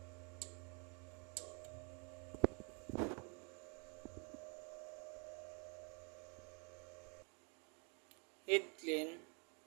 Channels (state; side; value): quieter; left; 36.0 dB